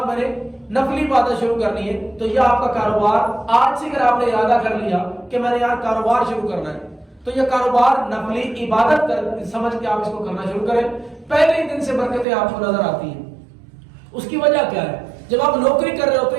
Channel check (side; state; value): left; drops out; at 12.2 s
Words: میں نے نفلی عبادت شروع کرنی ہے، تو یہ آپ کا کاروبار آج سے اگر آپ نے ارادہ کر لیا کہ میں نے یار کاروبار شروع کرنا ہے، تو یہ کاروبار نفلی عبادت کر سمجھ کے آپ اس کو کرنا شروع کریں. پہلے ہی دن سے برکتیں آپ کو نظر آتی ہیں. اس کی وجہ کیا ہے؟ جب آپ نوکری کر رہے ہوتے